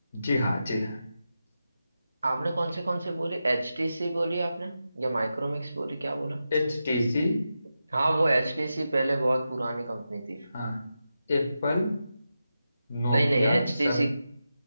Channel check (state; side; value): inverted; both; correlation -0.90